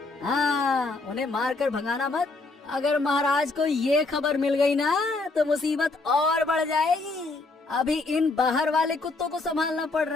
हाँ, उन्हें मारकर भगाना मत। अगर महाराज को ये खबर मिल गई ना तो मुसीबत और बढ़ जाएगी। अभी इन बाहर वाले कुत्तों को संभालना पड़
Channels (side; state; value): right; quieter; 3.5 dB